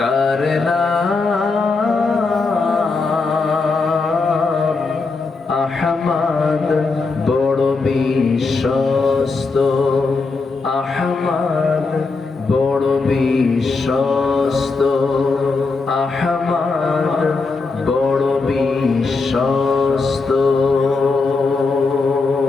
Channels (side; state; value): right; quieter; 4.0 dB